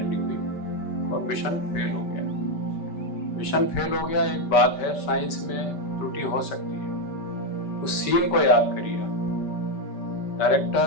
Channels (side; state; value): right; late; 5.2 ms